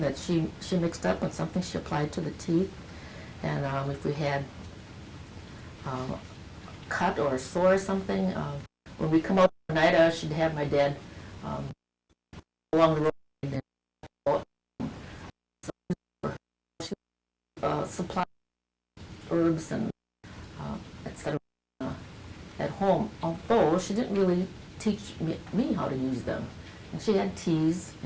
that she mixed up and something she applied to the teeth. And if we had a cut or a sore or something, when we come out at night, she'd have my dad along the road and supply herbs and etc. At home, although she didn't really teach me how to use them. And she had teas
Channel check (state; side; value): identical; both; correlation 1.00